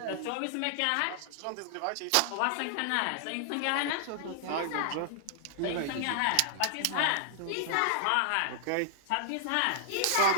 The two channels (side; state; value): both; different; correlation -0.01